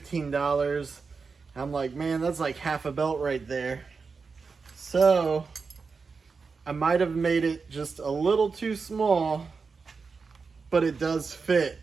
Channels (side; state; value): left; quieter; 4.9 dB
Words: I'm like, man, that's like half a belt right there. So I might have made it just a little too small, but it does fit.